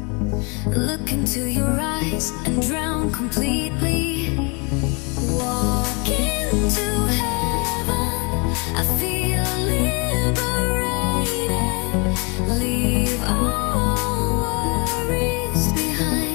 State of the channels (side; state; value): right; quieter; 31.9 dB